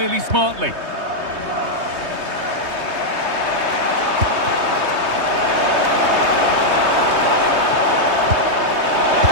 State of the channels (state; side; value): late; left; 3.2 ms